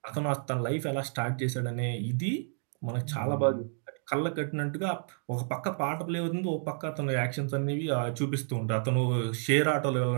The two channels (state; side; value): silent; left; 58 dB below the other